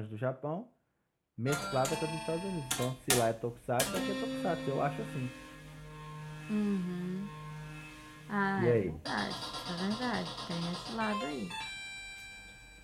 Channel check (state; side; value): identical; both; correlation 1.00